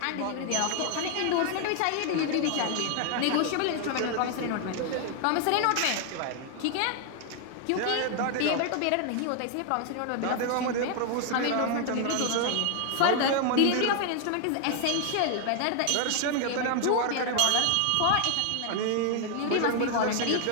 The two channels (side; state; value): both; different; correlation 0.00